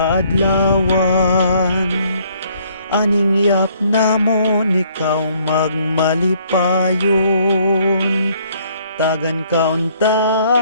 Aning yap namon, ikaw magmalipayon. Tagan kaunta,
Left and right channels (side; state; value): both; inverted; correlation -0.63